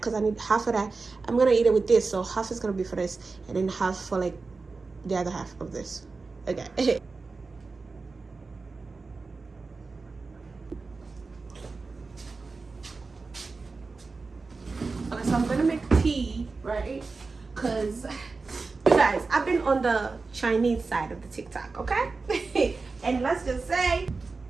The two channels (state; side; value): quieter; left; 4.1 dB